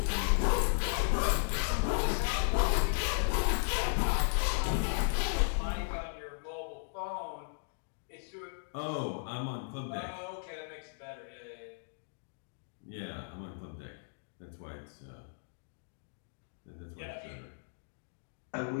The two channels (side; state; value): right; silent; digital silence